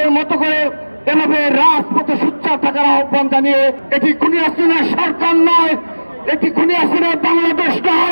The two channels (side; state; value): both; inverted; correlation -1.00